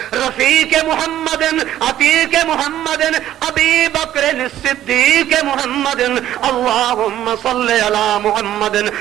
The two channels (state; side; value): quieter; left; 12.4 dB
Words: رفیق محمد عتیق محمد ابی بکر الصدیق محمد اللہم صل علی محمد